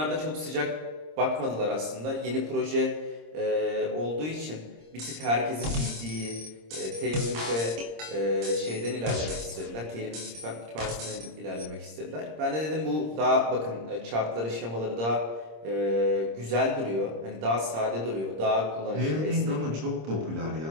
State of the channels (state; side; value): late; left; 26 ms